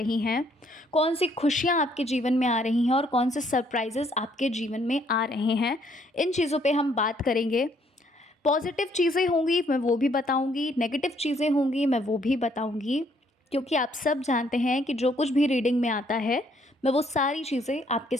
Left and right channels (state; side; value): normal; both; correlation 0.67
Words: हैं, कौन सी खुशियाँ आपके जीवन में आ रही हैं और कौन से सरप्राइजेस आपके जीवन में आ रहे हैं। इन चीज़ों पे हम बात करेंगे। पॉजिटिव चीज़ें होंगी मैं वो भी बताऊंगी, नेगेटिव चीज़ें होंगी मैं वो भी बताऊंगी, क्योंकि आप सब जानते हैं कि जो कुछ भी रीडिंग में आता है मैं वो सारी चीज़ें आपके